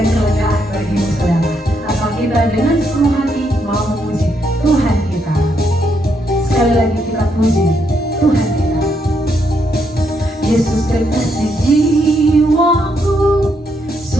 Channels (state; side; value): normal; both; correlation 0.76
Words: kelegaan bagimu saudara. Asal kita dengan sepenuh hati mau memuji Tuhan kita. Sekali lagi kita puji Tuhan kita. Yesus kekasih jiwaku,